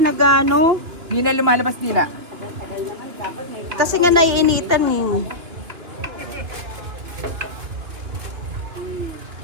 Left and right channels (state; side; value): late; left; 3.2 ms